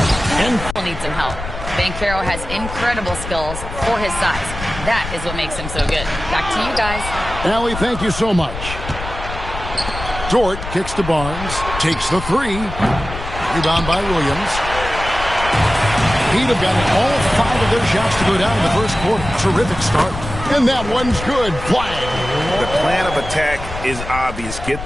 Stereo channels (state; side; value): noise; left; rumble, 9 dB below the sound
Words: And needs some help. Banchero has incredible skills for his size. That is what makes him so good. Back to you guys. Allie, thank you so much. Dort kicks to Barnes. Takes the 3. Rebound by Williams. Heat have gotten all 5 of their shots to go down in the first quarter. Terrific start. And that one's good. Flag. The plan of attack is obvious. Get